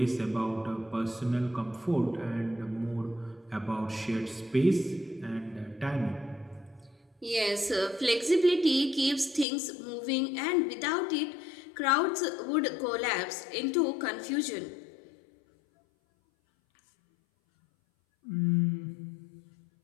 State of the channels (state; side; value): drops out; right; at 9.5 s